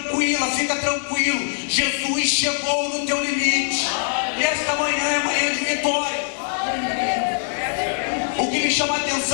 fica tranquilo. Jesus chegou no teu limite. E esta manhã é manhã de vitória. O que me chama a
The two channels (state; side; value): silent; right; 64 dB below the other